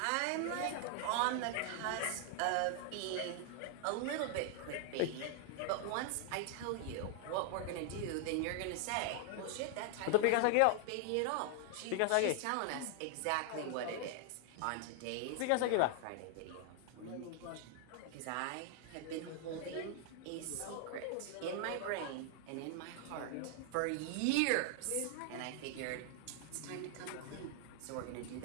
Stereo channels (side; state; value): both; different; correlation 0.00